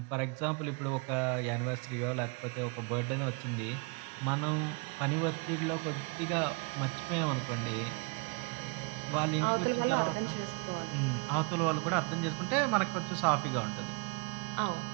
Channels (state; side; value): quieter; left; 32.0 dB